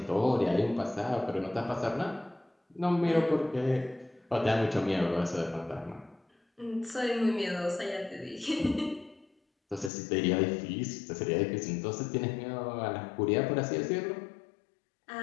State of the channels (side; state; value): right; drops out; at 9.9 s